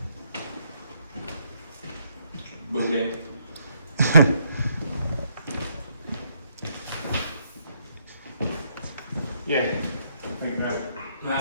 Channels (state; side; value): inverted; both; correlation -0.72